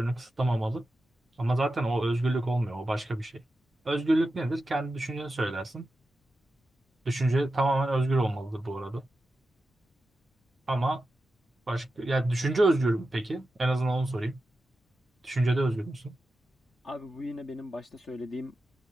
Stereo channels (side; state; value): both; normal; correlation 0.91